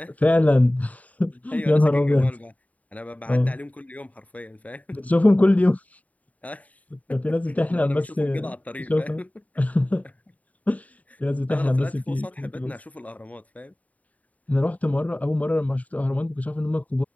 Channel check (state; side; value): late; right; 0.071 ms